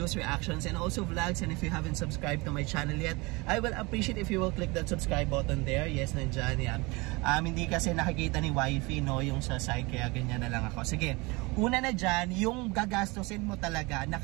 reactions, and also vlogs. And if you haven't subscribed to my channel yet, I will appreciate if you will click that subscribe button there. Yes, nandyan yan. Hindi kasi nakikita ni wifey, yung sa side, kaya ganyan na lang ako. Sige, una na dyan, yung gagastusin mo talaga,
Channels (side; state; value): left; quieter; 25.2 dB